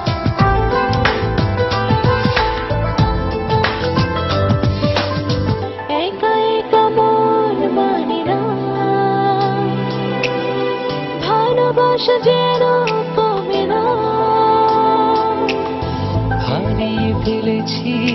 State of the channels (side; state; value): both; identical; correlation 1.00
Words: একা একা মন মানে না, ভালোবাসা যেন কমে না। হারিয়ে ফেলেছি